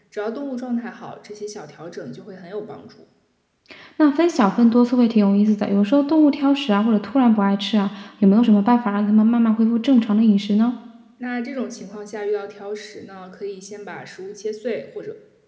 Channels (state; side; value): identical; both; correlation 1.00